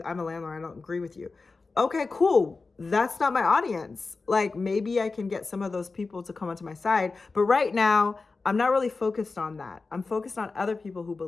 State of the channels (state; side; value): quieter; right; 4.0 dB